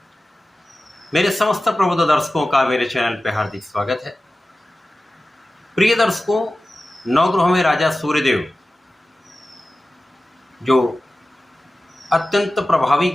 मेरे समस्त प्रबुद्ध दर्शकों का मेरे चैनल पर हार्दिक स्वागत है। प्रिय दर्शकों, नवग्रहों में राजा सूर्यदेव जो अत्यंत प्रभावी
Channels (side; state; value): both; normal; correlation 0.95